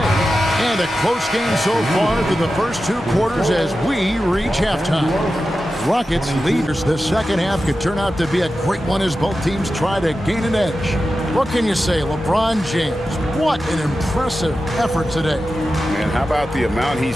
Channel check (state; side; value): normal; both; correlation 0.92